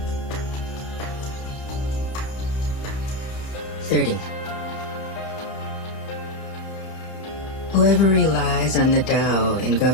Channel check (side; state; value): right; late; 30 ms